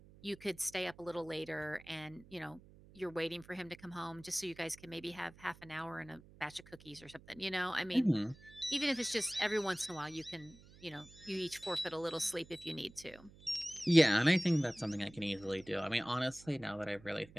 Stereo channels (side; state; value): right; noise; hum, 22 dB below the sound